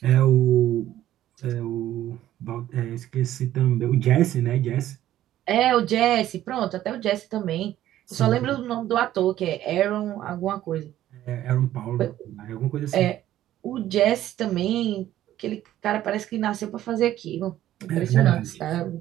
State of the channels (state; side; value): quieter; left; 13.1 dB